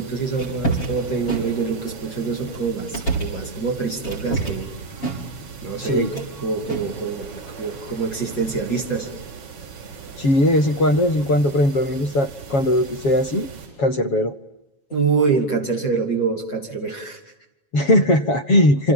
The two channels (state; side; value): late; right; 7.2 ms